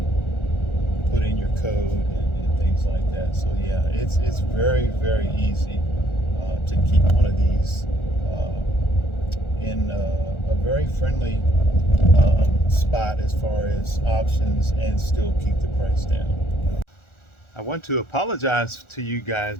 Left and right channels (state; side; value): late; right; 1.4 ms